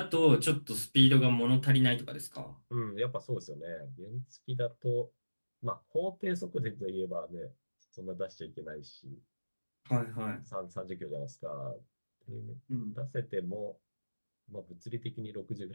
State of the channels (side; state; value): both; inverted; correlation -1.00